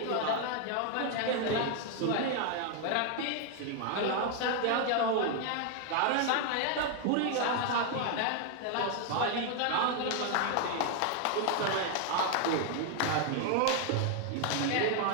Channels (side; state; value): both; different; correlation 0.00